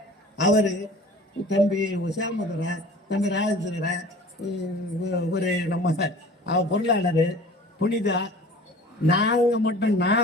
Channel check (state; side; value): normal; both; correlation 0.44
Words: அவரு தம்பி சேமதுரை, தம்பி ராஜேந்திரன், ஒரு நம்ம பொருளாளர் புனிதா, நாங்க மட்டும்